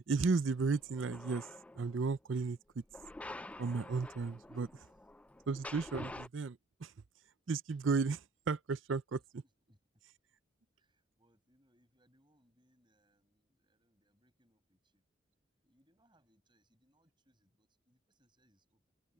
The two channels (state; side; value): quieter; left; 3.9 dB